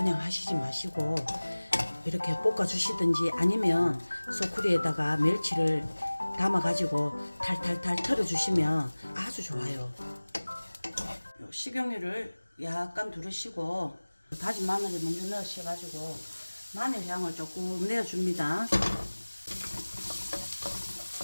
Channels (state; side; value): inverted; both; correlation -1.00